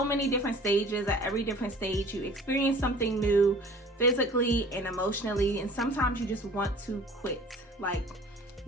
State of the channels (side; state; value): both; normal; correlation 0.47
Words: many different stages. At every different stage, you experience something new physically and emotionally. And sometimes you just want to quit.